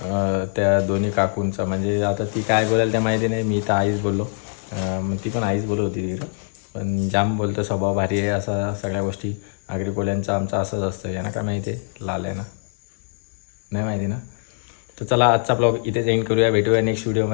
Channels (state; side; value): silent; right; digital silence